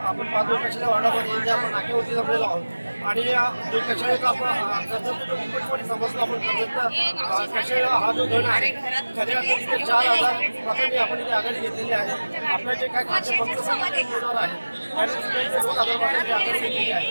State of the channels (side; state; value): both; inverted; correlation -1.00